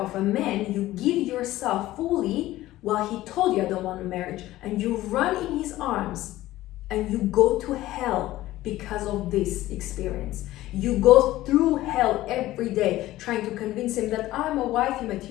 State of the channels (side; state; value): right; quieter; 15.9 dB